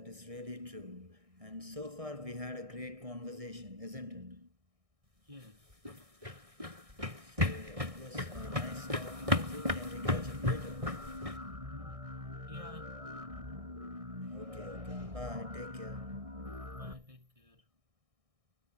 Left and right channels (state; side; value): late; left; 1.6 ms